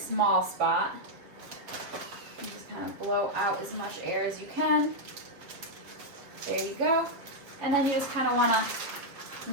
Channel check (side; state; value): left; late; 7.2 ms